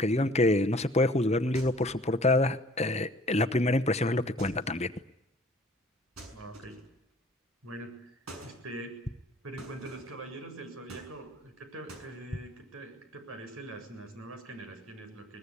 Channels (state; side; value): normal; both; correlation 0.52